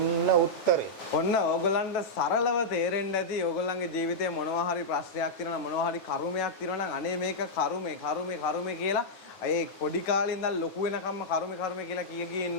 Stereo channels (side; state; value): right; late; 9.1 ms